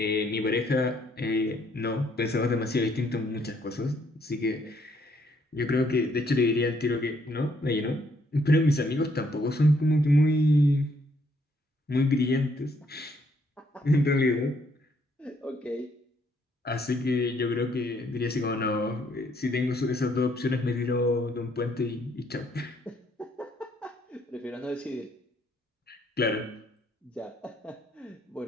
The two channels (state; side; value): normal; both; correlation 0.69